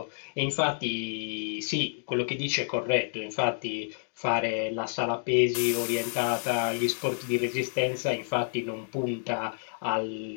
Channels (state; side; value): silent; right; digital silence